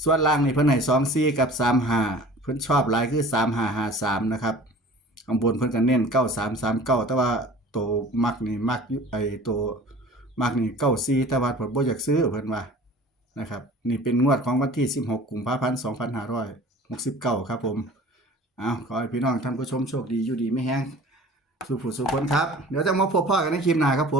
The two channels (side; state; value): both; normal; correlation 0.44